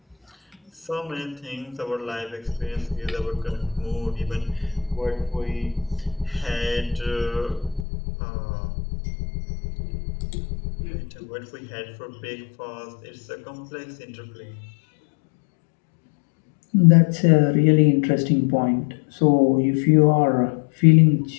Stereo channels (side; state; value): right; drops out; at 7.9 s